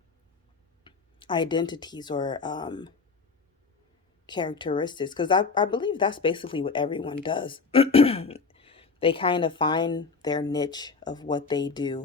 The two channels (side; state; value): right; quieter; 4.7 dB